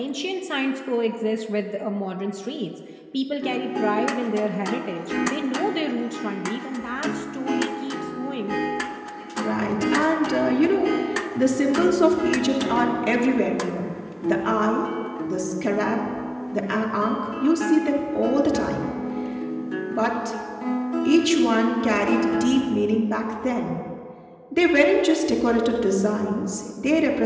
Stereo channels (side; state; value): both; identical; correlation 1.00